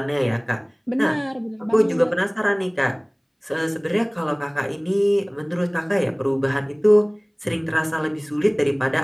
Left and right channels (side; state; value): both; identical; correlation 1.00